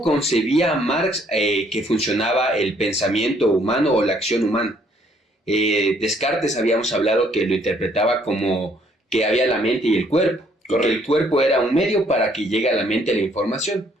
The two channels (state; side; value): normal; both; correlation 0.65